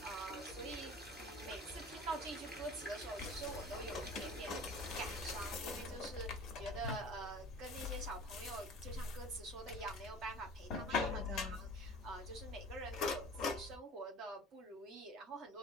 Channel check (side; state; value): both; normal; correlation 0.42